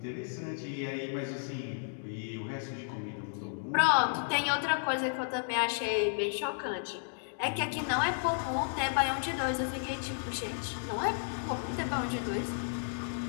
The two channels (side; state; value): right; silent; digital silence